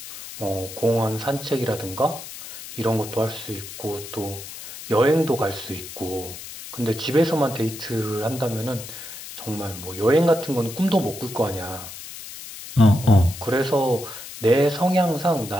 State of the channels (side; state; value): left; noise; hiss, 12 dB below the sound